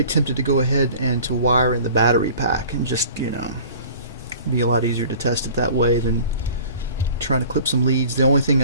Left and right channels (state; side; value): inverted; both; correlation -0.46